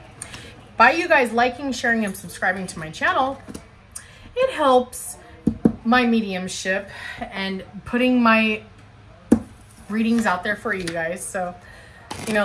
By you guys liking, sharing, and subscribing to my channel, it helps my mediumship and putting my readings out there for you guys. So, you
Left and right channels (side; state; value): both; identical; correlation 1.00